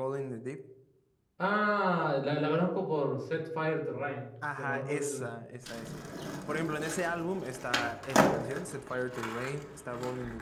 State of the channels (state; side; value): identical; both; correlation 1.00